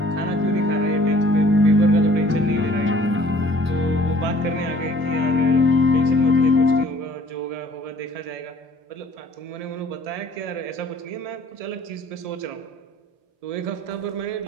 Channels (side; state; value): left; late; 1.7 ms